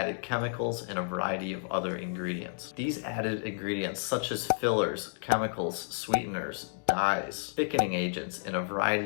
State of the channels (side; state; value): right; silent; digital silence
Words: chemicals and a variety of other ingredients. These added ingredients, such as fillers, chemicals, sweeteners, dyes, thickening agents, and a